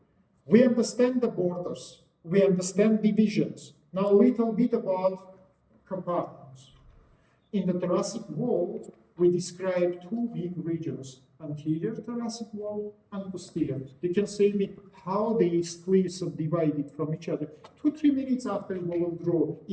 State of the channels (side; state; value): both; identical; correlation 1.00